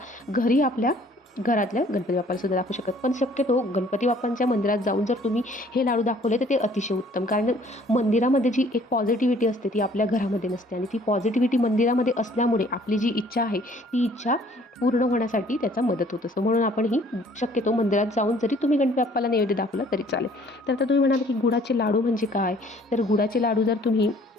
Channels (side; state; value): both; normal; correlation 0.57